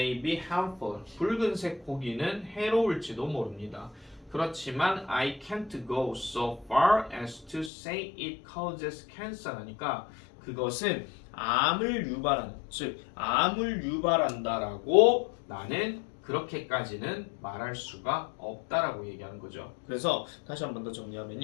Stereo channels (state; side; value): drops out; right; at 7.7 s